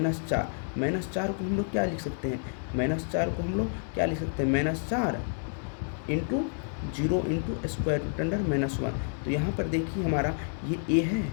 को हम लोग क्या लिख सकते हैं, -4 को हम लोग क्या लिख सकते हैं, -4 into 0 into square root under -1। तो यहाँ पर देखिए हमारा ये ए है,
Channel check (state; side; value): silent; right; digital silence